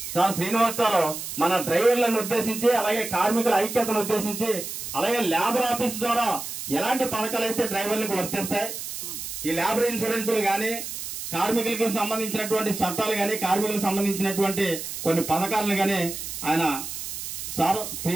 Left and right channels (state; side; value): noise; right; hiss, 7 dB below the sound